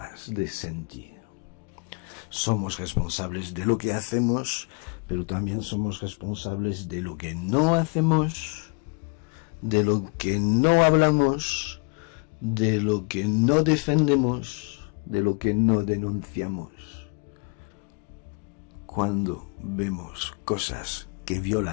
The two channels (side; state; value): right; quieter; 35.2 dB